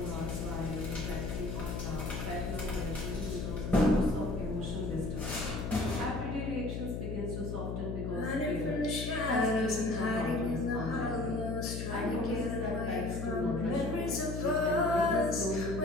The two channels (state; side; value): noise; left; hum, 3 dB below the sound